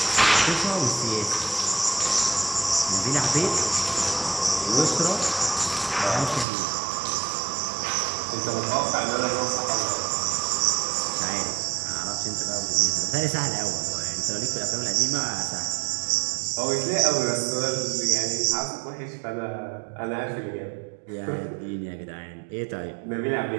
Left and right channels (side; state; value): left; drops out; at 6.5 s